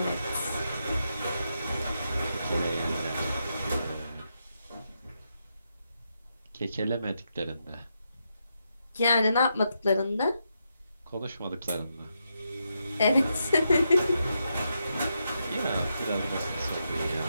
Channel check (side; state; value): both; inverted; correlation -0.83